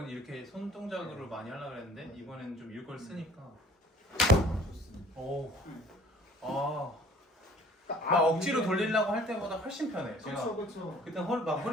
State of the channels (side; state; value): both; normal; correlation 0.52